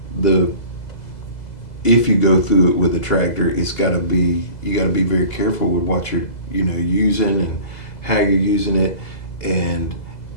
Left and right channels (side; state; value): right; late; 2.0 ms